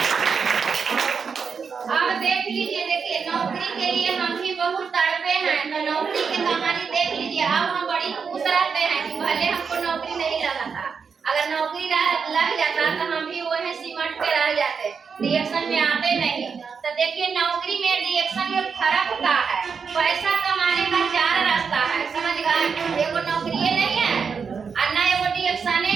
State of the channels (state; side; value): quieter; left; 5.9 dB